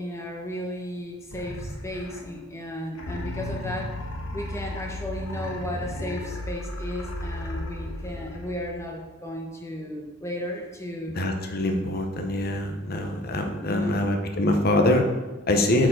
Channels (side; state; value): both; normal; correlation 0.52